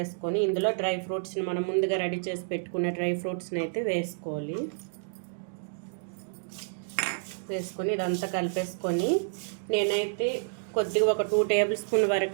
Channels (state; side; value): silent; left; digital silence